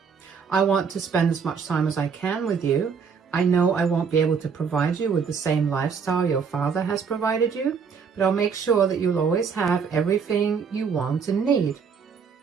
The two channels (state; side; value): quieter; left; 6.1 dB